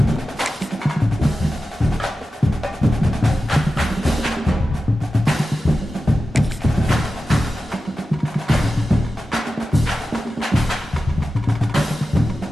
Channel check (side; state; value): both; normal; correlation 0.93